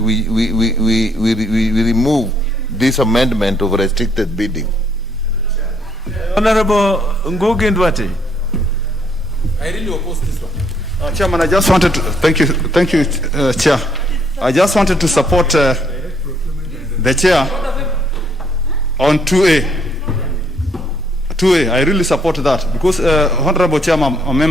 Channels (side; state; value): both; normal; correlation 0.69